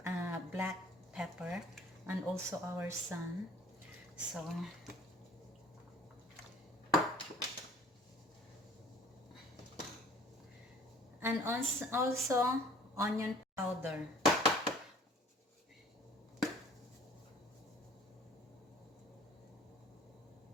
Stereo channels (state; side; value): normal; both; correlation 0.51